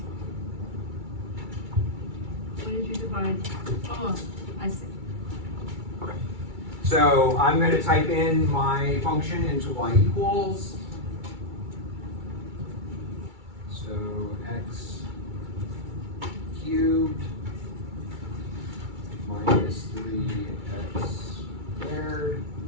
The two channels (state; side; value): late; left; 2.3 ms